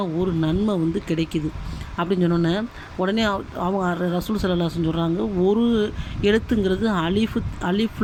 ஒரு நன்மை கிடைக்குது அப்படின்னு சொன்னோன்னே உடனே அவங்க ரசூல் ஸல்லல்லாஹு அலைஹி வஸல்லம் சொல்கிறாங்க, ஒரு எழுத்துங்கிறது அலிஃப்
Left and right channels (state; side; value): identical; both; correlation 1.00